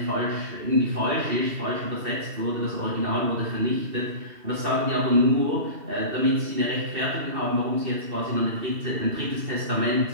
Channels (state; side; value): late; left; 2.7 ms